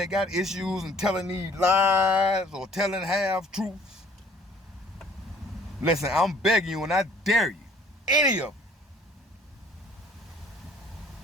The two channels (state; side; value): normal; both; correlation 0.55